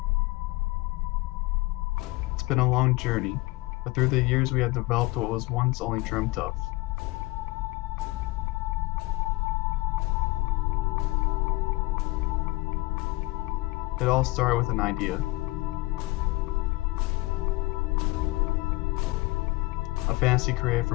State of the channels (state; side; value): quieter; right; 22.3 dB